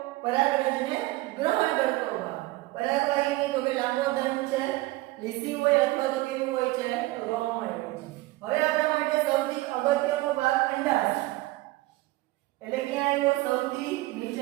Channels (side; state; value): left; quieter; 19.7 dB